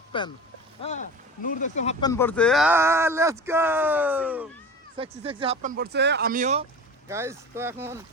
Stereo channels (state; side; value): normal; both; correlation 0.34